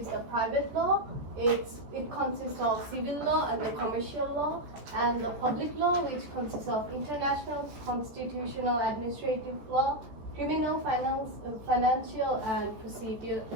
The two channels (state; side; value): late; left; 14 ms